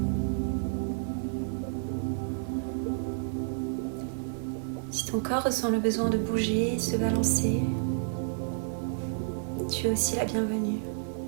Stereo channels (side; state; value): left; silent; 58 dB below the other